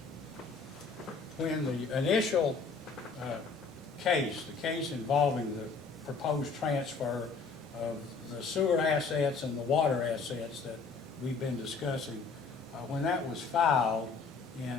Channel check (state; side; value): quieter; right; 4.7 dB